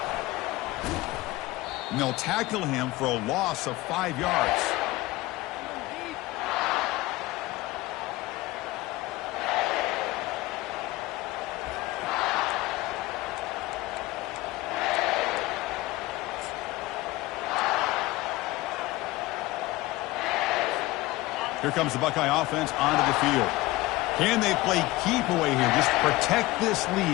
And they'll tackle him for a loss of 5 yards. Here comes the Buckeye offense onto the field. Can they play keep away here? Just protect this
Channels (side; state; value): right; quieter; 19.1 dB